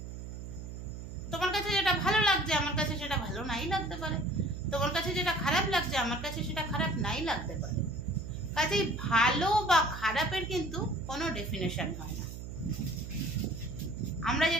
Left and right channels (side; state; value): right; noise; hum, 9 dB below the sound